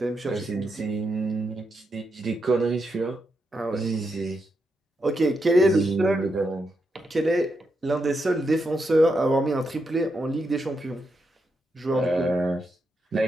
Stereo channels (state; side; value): normal; both; correlation 0.83